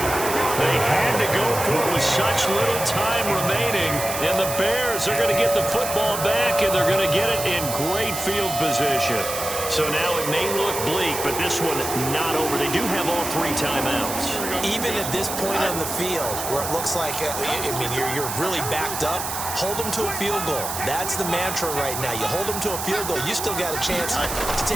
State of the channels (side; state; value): right; noise; hiss, 5 dB below the sound